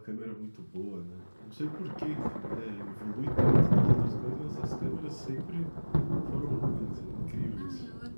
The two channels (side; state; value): both; inverted; correlation -1.00